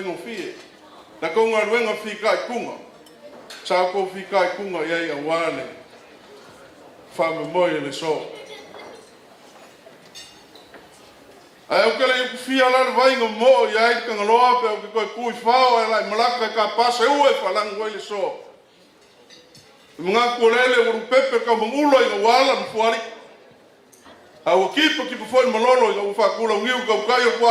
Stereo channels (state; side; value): identical; both; correlation 1.00